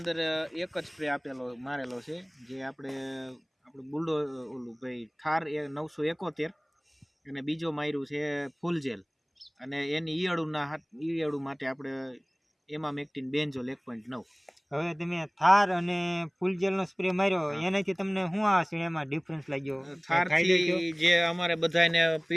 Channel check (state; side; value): identical; both; correlation 1.00